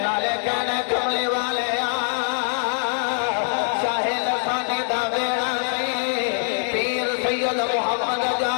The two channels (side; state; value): right; silent; digital silence